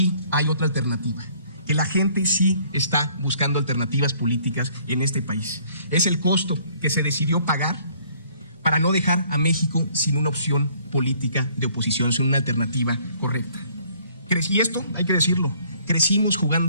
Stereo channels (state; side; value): inverted; both; correlation -0.60